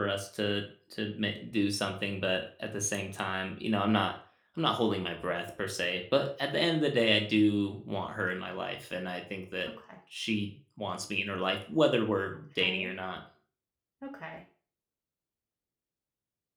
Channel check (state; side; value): identical; both; correlation 1.00